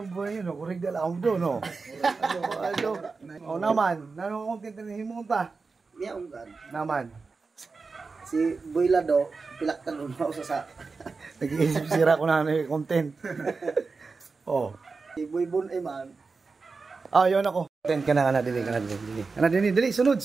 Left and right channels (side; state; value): left; quieter; 4.4 dB